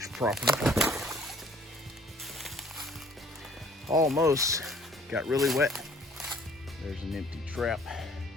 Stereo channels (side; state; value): both; normal; correlation 0.56